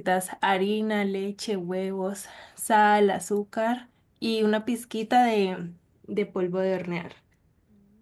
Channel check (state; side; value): identical; both; correlation 1.00